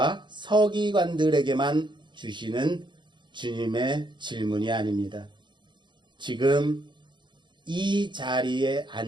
서기관들에게만 주시는 주님의 질문이 아닙니다. 지금 이 자리에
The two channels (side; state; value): left; late; 0.23 ms